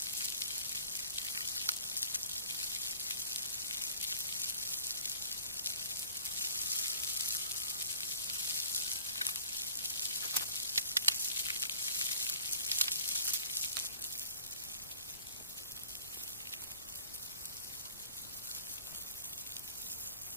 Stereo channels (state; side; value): inverted; both; correlation -0.49